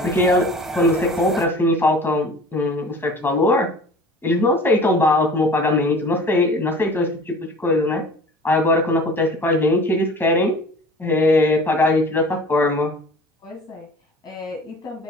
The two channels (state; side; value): normal; both; correlation 0.44